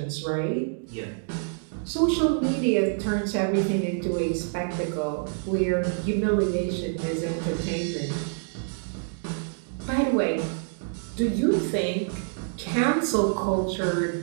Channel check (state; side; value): silent; left; digital silence